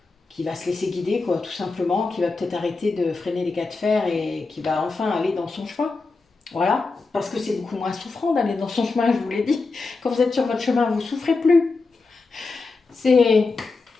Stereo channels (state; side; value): quieter; right; 3.9 dB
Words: va se laisser guider, quoi, tout simplement, qui va peut-être arrêter de freiner les cas de fer et qui va enfin aller dans son chemin. Voilà, parce que c'est beaucoup moins souffrant d'aller dans son chemin, je vous l'ai dit. Quand vous êtes sur votre chemin, vous ne souffrez plus. C'est